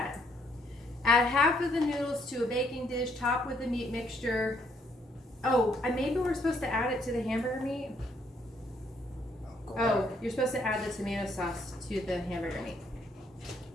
Add half of the noodles to a baking dish, top with the meat mixture. Oh, and maybe we're supposed to add it to the hamburger meat? Go Oh, back. you're supposed to add the tomato sauce to the hamburger meat.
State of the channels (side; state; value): both; normal; correlation 0.69